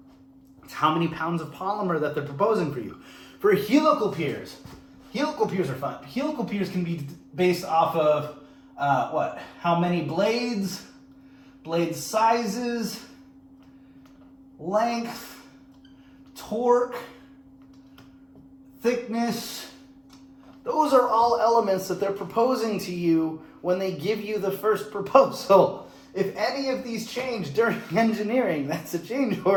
it's how many pounds of polymer that they're proposing for you. For helical piers are fun. Helical piers can be based off of how many blades, blade sizes, length, torque, thickness. Those are all elements that they're proposing to you when they give you the first proposal. If any of these change during engineering, that's a change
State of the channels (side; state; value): both; identical; correlation 1.00